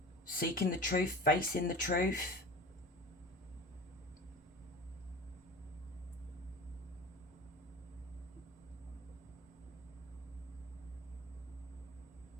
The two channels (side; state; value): both; normal; correlation 0.36